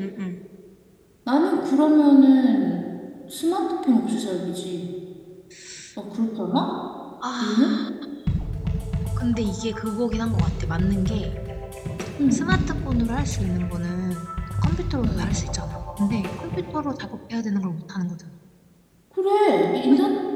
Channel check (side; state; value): both; identical; correlation 1.00